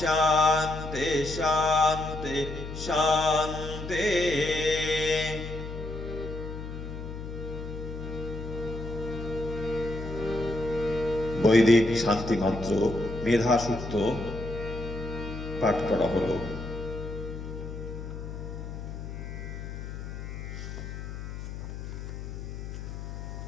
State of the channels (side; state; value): left; noise; hum, 8 dB below the sound